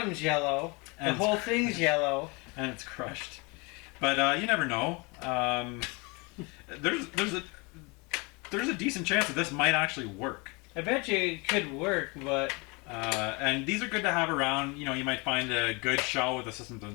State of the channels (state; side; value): quieter; right; 28.5 dB